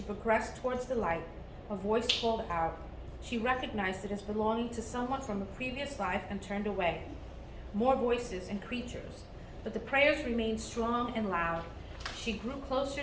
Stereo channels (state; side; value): identical; both; correlation 1.00